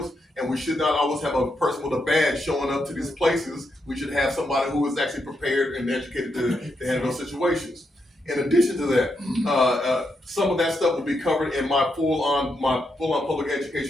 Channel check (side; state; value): both; normal; correlation 0.82